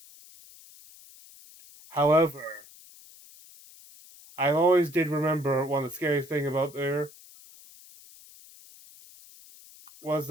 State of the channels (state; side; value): noise; left; hiss, 22 dB below the sound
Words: However, I always did remember one of the scariest thing about there was